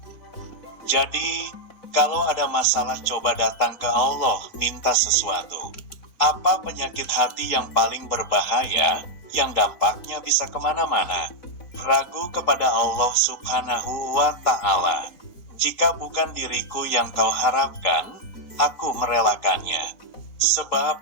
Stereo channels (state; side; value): late; right; 4.0 ms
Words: Jadi, kalau ada masalah coba datang ke Allah, minta sesuatu. Apa penyakit hati yang paling berbahaya, yang dampaknya bisa kemana-mana? Ragu kepada Allah Subhanahu wa Ta'ala. Jika bukan diriku yang kau harapkan, aku merelakannya. Sebab,